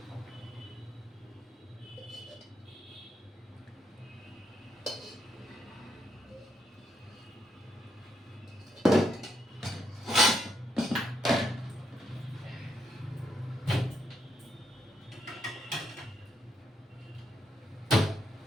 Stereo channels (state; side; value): normal; both; correlation 0.78